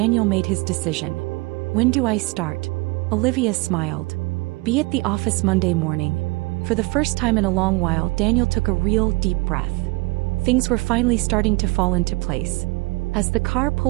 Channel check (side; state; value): left; quieter; 25.2 dB